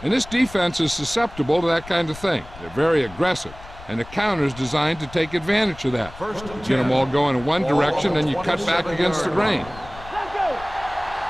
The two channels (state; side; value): noise; left; rumble, 17 dB below the sound